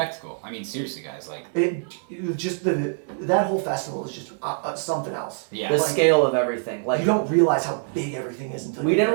I mean, seriously, guys. Like, it just that whole festival is just something else. yeah. The Like, scale of everything, like you don't realize how big everything is until we you didn't get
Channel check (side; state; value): left; silent; 62 dB below the other